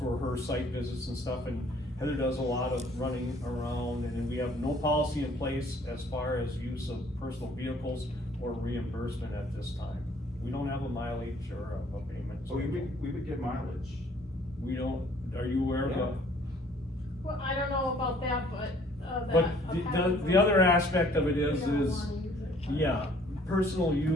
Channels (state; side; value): normal; both; correlation 0.59